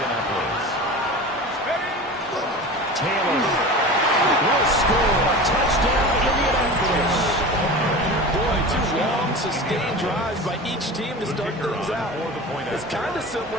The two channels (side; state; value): both; normal; correlation 0.33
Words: Taylor. Will score. Touchdown, Indianapolis. Boy, 2 long, sustained drives by each team to start things out. It's kind of similar